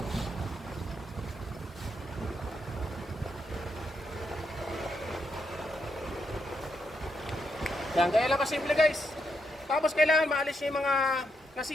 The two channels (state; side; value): normal; both; correlation 0.80